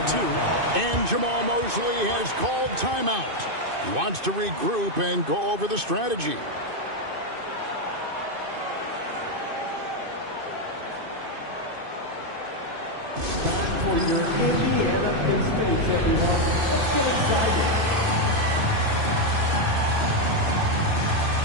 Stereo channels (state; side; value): late; left; 2.6 ms